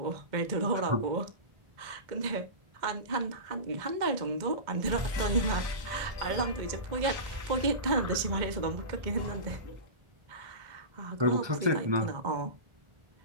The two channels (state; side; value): late; left; 2.1 ms